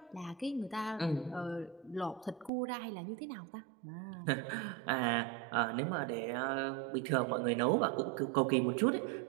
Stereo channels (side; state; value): left; drops out; at 2.5 s